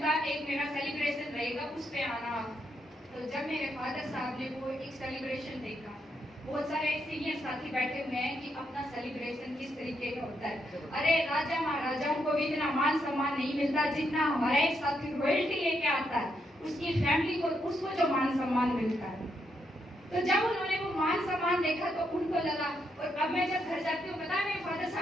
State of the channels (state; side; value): normal; both; correlation 0.79